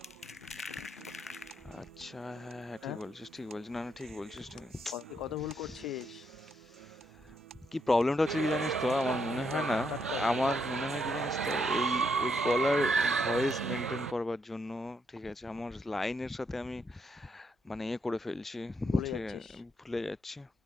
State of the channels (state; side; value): normal; both; correlation 0.77